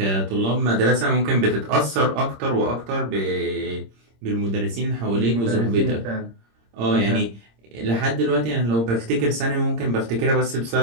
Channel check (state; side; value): late; left; 26 ms